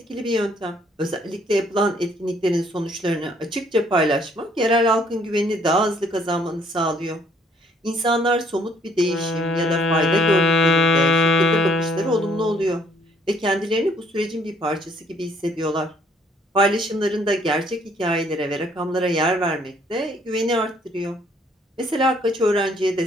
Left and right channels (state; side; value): normal; both; correlation 0.63